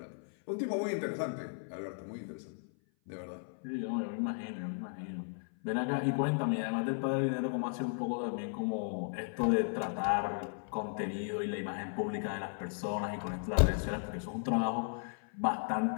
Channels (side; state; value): right; silent; 54 dB below the other